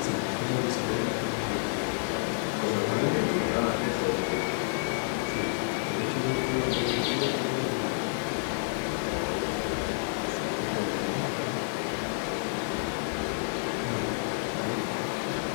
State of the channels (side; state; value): right; silent; 58 dB below the other